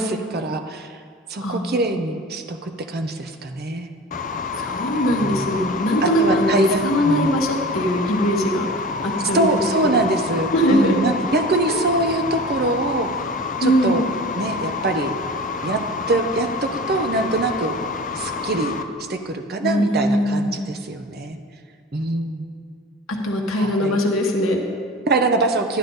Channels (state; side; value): normal; both; correlation 0.36